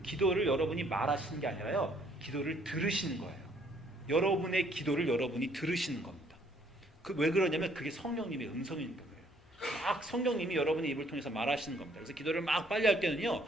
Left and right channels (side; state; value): both; normal; correlation 0.64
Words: 기도를 여러분이 말하시는 게 아니라요, 기도를 들으시는 거예요. 여러분의 기도를 여러분이 들으시는 겁니다. 왜 그러냐면 그게 성령님의 음성이니까 그래요. 막 성령님이 여러분의 입을 통해서 말하시는 겁니다. 그래서 기도를 막 빨리 할 때는요,